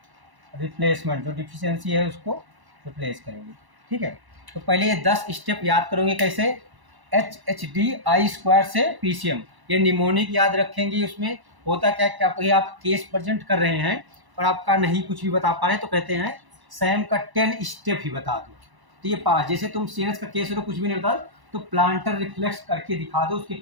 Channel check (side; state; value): left; late; 1.0 ms